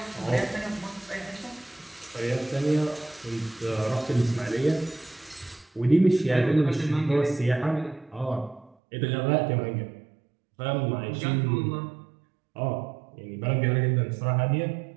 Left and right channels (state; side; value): drops out; left; at 8.8 s